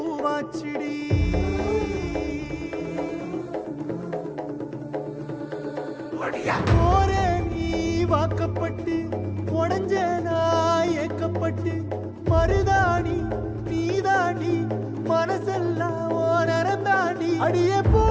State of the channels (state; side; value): identical; both; correlation 1.00